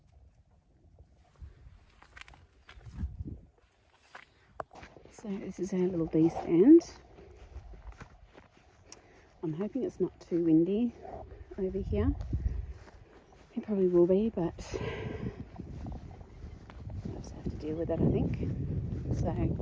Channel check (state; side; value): identical; both; correlation 1.00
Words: So this is our little bee stand. I'm hoping it's not too windy over here. It probably will be, but I'll just have to deal with it, I think. So